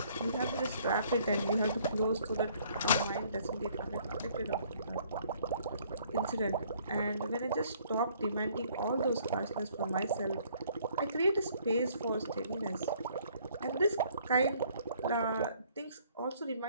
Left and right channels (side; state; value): both; inverted; correlation -0.61